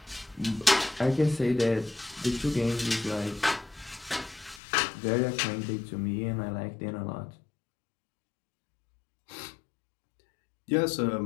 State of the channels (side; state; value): right; drops out; at 4.6 s